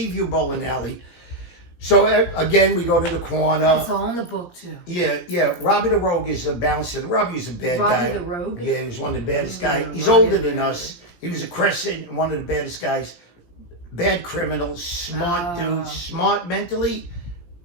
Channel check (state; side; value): late; right; 17 ms